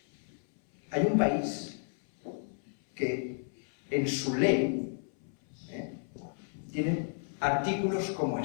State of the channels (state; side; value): silent; right; 56 dB below the other